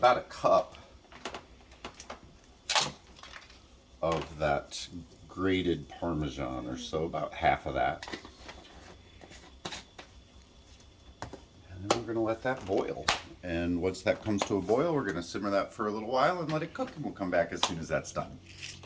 a cup of that grated Parmesan or so, about half of that. And then we're going to let that boil. And once that comes to a boil, we're going to simmer that for a little while and let it cook, and we'll come back as soon as that's done.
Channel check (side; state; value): both; identical; correlation 1.00